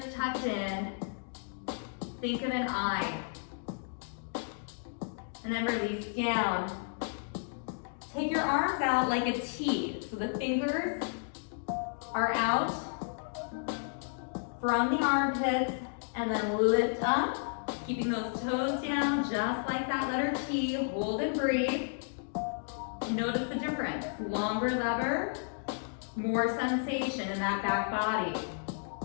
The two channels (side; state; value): right; silent; digital silence